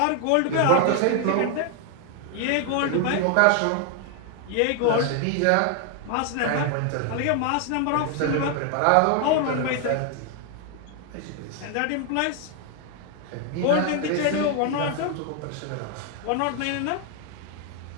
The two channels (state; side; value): different; both; correlation 0.00